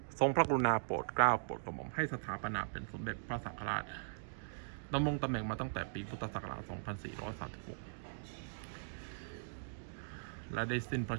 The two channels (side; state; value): left; silent; digital silence